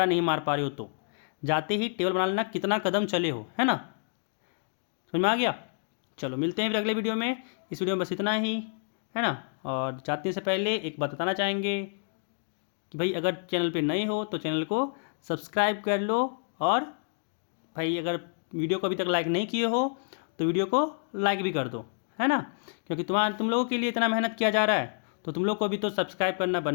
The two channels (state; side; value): silent; right; digital silence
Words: नहीं मार पा रहे हो तो जाते ही टेबल बना लेना, कितना कदम चले हो, है ना, समझ में आ गया। चलो मिलते हैं फिर अगले वीडियो में, इस वीडियो में बस इतना ही, है ना। और जाने से पहले एक बात बताना चाहेंगे कि भाई अगर चैनल पे नए हो तो चैनल को सब्सक्राइब कर लो, और भाई अगर वीडियो को अभी तक लाइक नहीं किए हो तो वीडियो को लाइक भी कर दो, है ना, क्योंकि तुम लोगों के लिए इतना मेहनत किया जा रहा है तो तुम लोग को भी तो सब्सक्राइब करना